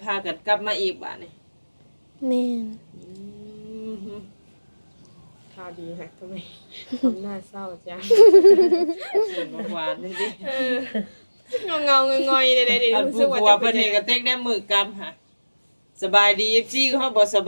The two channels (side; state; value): both; inverted; correlation -1.00